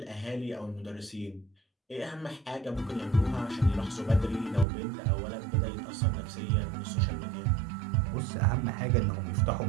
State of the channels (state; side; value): drops out; left; at 4.7 s